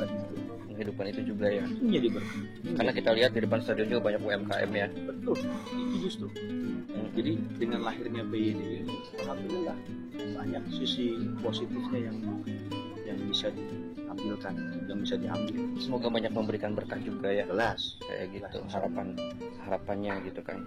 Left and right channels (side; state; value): both; identical; correlation 1.00